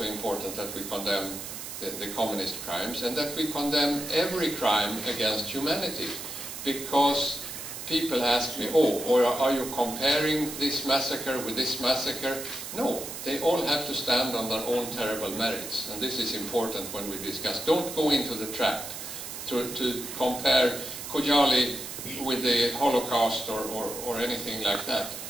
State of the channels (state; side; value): noise; right; hiss, 9 dB below the sound